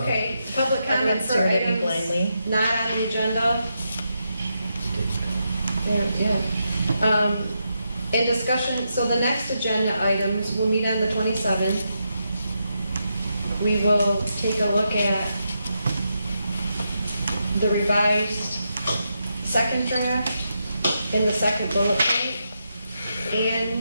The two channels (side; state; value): both; inverted; correlation -0.83